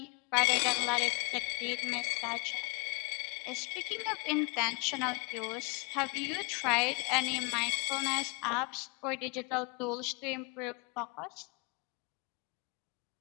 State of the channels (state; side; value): quieter; right; 30.8 dB